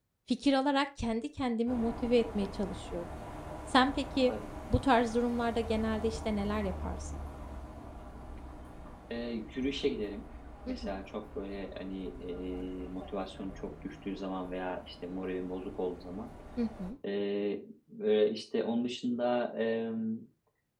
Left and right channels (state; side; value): identical; both; correlation 1.00